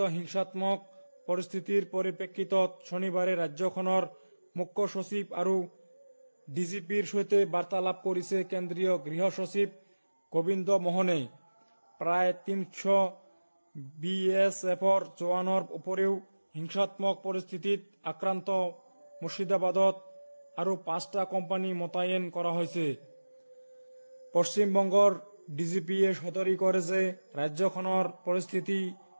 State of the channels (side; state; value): both; inverted; correlation -1.00